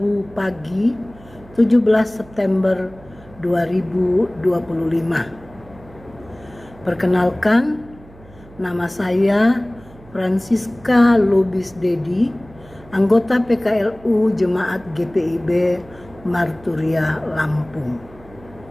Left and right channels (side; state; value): right; noise; hum, 22 dB below the sound